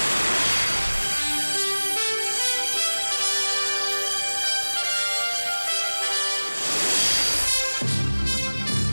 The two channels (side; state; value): both; inverted; correlation -1.00